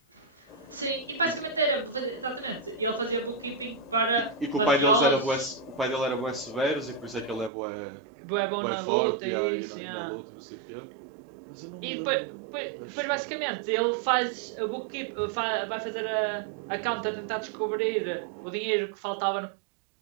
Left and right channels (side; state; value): left; drops out; at 7.5 s